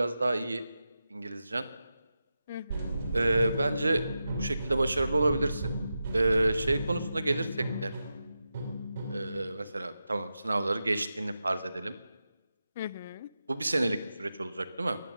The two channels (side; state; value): both; inverted; correlation -0.90